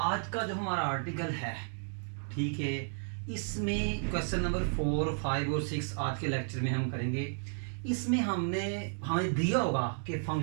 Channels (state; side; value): silent; left; 56 dB below the other